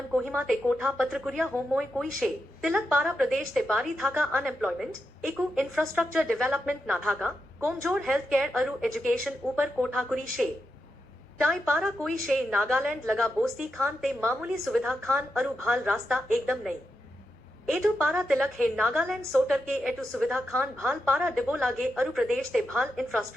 कोहिमा ते कोठा पत्रकुरिया होमोय कोई शे तिलक पारा प्रदेश ते बारी थाका अनएम्प्लॉयमेंट एकू इंफ्रास्ट्रक्चर डेवलपमेंट ना थाका कोमजोर हेल्थ केयर अरु एजुकेशन ऊपर कोठा कुरी शे टाई पारा कोई शे नागालैंड लगा बोस्ती खान ते मामूली सुविधा खान अरु भाल रास्ता एकदम नहीं एटू पारा तिलक है नागालैंड सोटर के एटू सुविधा खान भाल पारा डिबो लागे अरु प्रदेश ते भाल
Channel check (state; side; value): normal; both; correlation 0.86